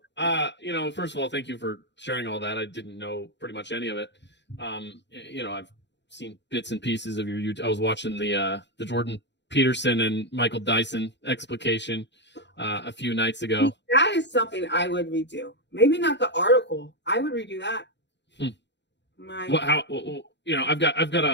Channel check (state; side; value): late; right; 0.51 ms